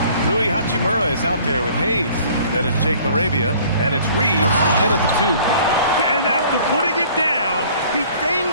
Rui Hachimura is out there with Hayes. Then it's Jake LaRavia, and it's Reeves in at the 2. And after putting it down, he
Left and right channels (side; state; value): both; inverted; correlation -0.53